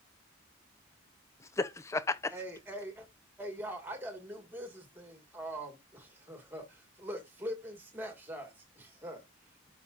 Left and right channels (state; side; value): normal; both; correlation 0.44